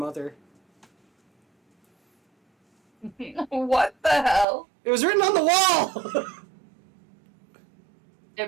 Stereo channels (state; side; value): drops out; left; at 4.5 s